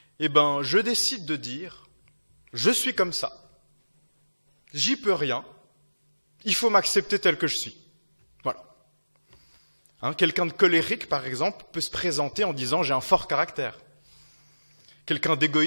je décide de dire, je suis comme ça, j'y peux rien, il faut m'accepter tel que je suis. Voilà. Quelqu'un de colérique, par exemple, peut se présenter en disant « j'ai un fort caractère ». Quelqu'un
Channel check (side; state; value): both; inverted; correlation -1.00